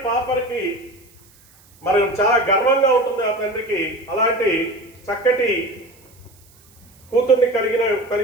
పాపకి మరి చాలా గర్వంగా ఉంటుంది ఆ తండ్రికి. అలాంటి చక్కటి కూతుర్ని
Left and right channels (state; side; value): noise; right; hiss, 29 dB below the sound